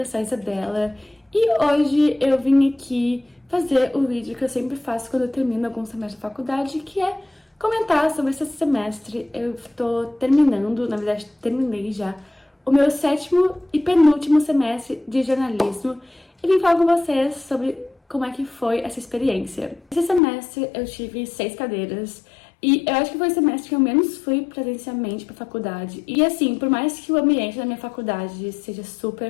sou a Isabela e hoje eu vim aqui fazer o vídeo que eu sempre faço quando eu termino algum semestre da faculdade, que é comentar sobre esse semestre. Eu tô terminando, na verdade terminei já, o meu 7º e penúltimo semestre de jornalismo e vim falar com vocês sobre como é que foi essa experiência. Esse semestre eu tive 6 cadeiras e eu acho que foi o semestre que eu menos fui presencialmente pra faculdade. E assim, por mais que o ambiente da minha faculdade seja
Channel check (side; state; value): right; drops out; at 20.2 s